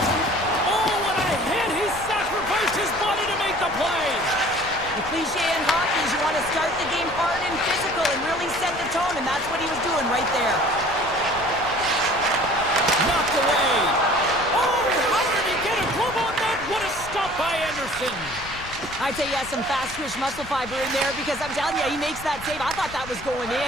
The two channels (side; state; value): left; noise; rumble, 15 dB below the sound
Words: Oh, what a hit! He sacrificed his body to make the play. The cliche in hockey is you want to start the game hard and physical and really set the tone, and that's what he was doing right there. Knocked away. Oh, how did he get a glove on that? What a stop by Anderson. I'd say he has some fast twitch muscle fiber in there because I'm telling you, he makes that save. I thought that was going